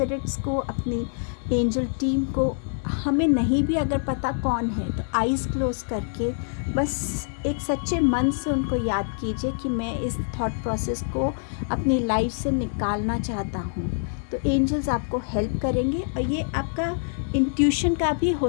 को, अपनी एंजल टीम को, हमें नहीं भी अगर पता कौन है तो आइज़ क्लोज करके बस एक सच्चे मन से उनको याद कीजिए कि मैं इस थॉट प्रोसेस को अपनी लाइफ से निकालना चाहता हूँ, तो एंजल्स आपको हेल्प करेंगे। और ये आपका इंट्यूशन का भी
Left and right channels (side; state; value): right; silent; digital silence